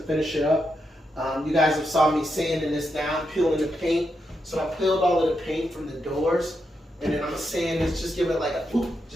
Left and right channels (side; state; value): both; normal; correlation 0.83